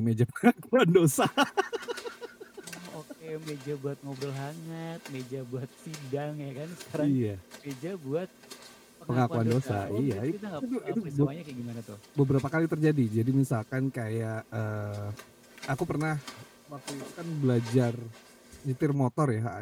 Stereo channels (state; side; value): identical; both; correlation 1.00